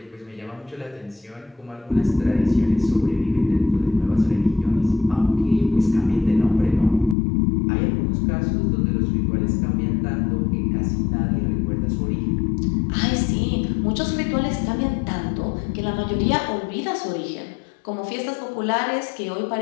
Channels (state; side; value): drops out; right; at 7.2 s